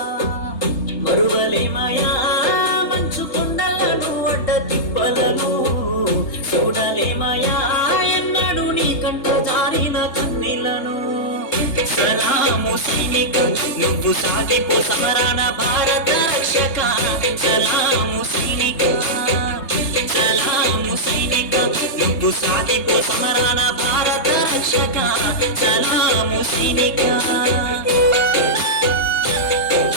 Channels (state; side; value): late; right; 3.3 ms